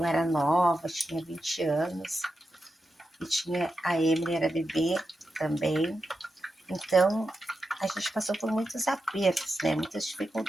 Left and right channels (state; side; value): normal; both; correlation 0.89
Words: era nova, tinha 20 anos, e tinha a Emily, era bebê também. Então, a gente passou por muitos apertos, né? Muitas